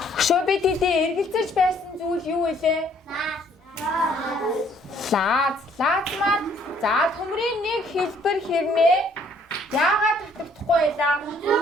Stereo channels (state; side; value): normal; both; correlation 0.63